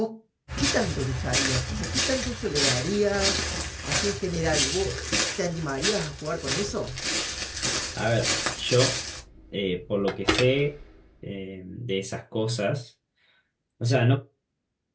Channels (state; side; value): identical; both; correlation 1.00